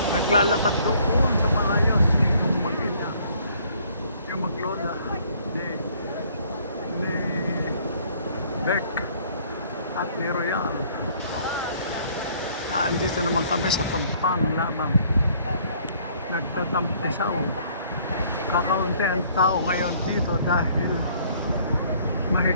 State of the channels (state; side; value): inverted; both; correlation -0.60